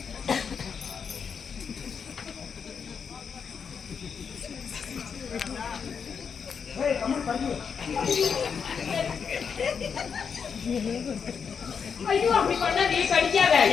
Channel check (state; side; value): quieter; right; 6.5 dB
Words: ஐயோ அப்படி பண்ணா நீ கடிக்காத.